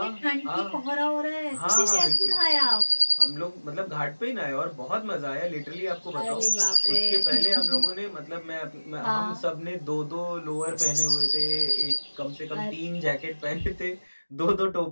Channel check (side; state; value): both; inverted; correlation -1.00